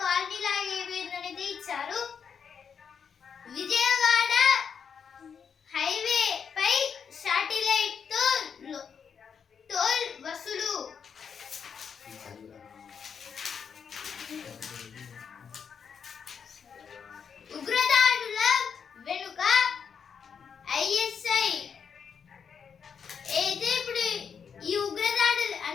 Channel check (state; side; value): quieter; right; 6.8 dB